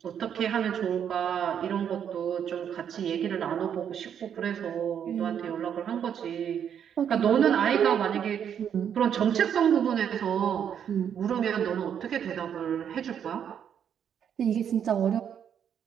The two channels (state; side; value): quieter; left; 8.5 dB